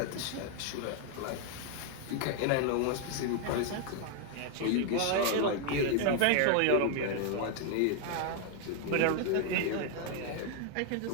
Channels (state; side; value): different; both; correlation 0.00